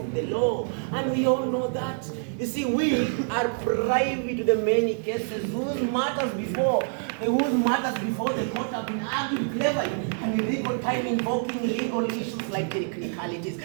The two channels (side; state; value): left; silent; digital silence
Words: the law, and we all know that. You see, we are privy to the many cases whose matters before the court have been argued cleverly and in legal time invoking legal issues like technicalities,